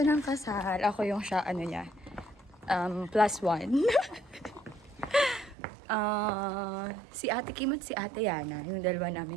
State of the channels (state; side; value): drops out; left; at 5.6 s